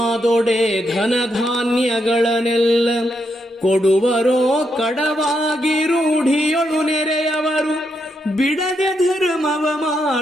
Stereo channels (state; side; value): normal; both; correlation 0.80